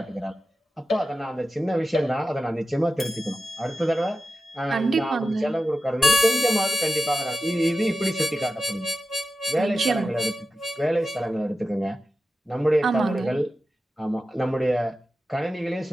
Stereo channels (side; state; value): both; normal; correlation 0.92